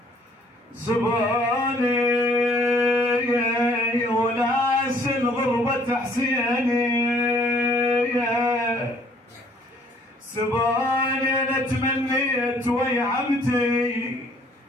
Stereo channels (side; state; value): both; normal; correlation 0.60